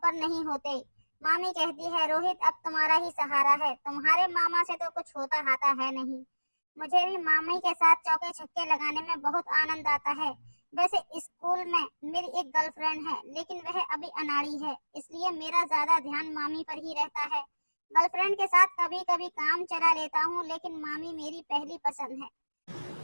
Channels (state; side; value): inverted; both; correlation -1.00